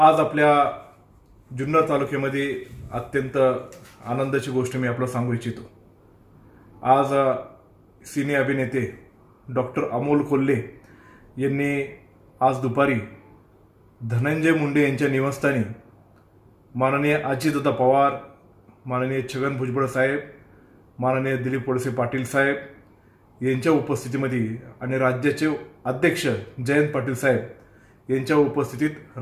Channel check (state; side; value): identical; both; correlation 1.00